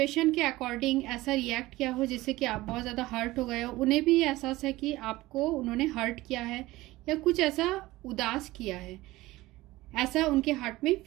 के अकॉर्डिंग ऐसा रिएक्ट किया हो जिससे कि आप बहुत ज़्यादा हर्ट हो गए हो। उन्हें भी एहसास है कि आपको उन्होंने हर्ट किया है या कुछ ऐसा उदास किया है, ऐसा उनके हार्ट में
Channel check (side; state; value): left; quieter; 18.6 dB